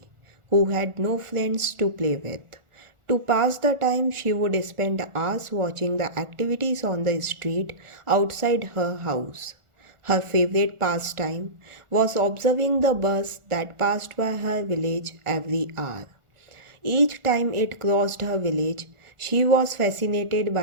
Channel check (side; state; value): left; late; 1.4 ms